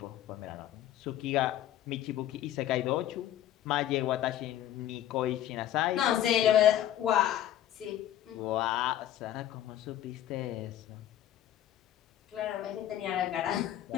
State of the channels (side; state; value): right; quieter; 11.9 dB